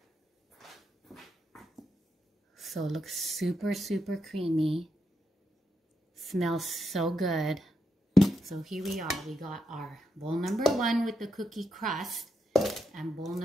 So it looks super, super creamy. Smells so good. So here we are. We got our bowl number 1 with the cookie crust and bowl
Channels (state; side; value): normal; both; correlation 0.83